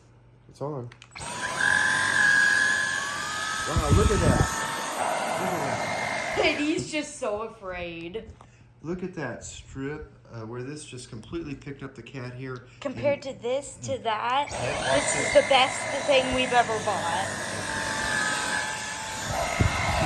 It's on. Wow, look at that. Look at that. And he's just so afraid. Look at that strip where this just completely picked up the cat hair. Compared to this, to that, this is the best thing we've ever bought.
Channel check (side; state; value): both; identical; correlation 1.00